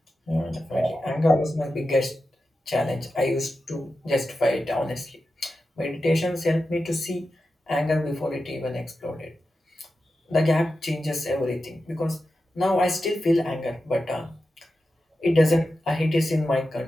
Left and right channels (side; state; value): both; normal; correlation 0.91